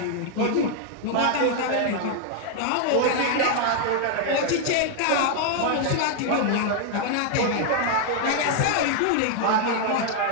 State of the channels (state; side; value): different; both; correlation 0.00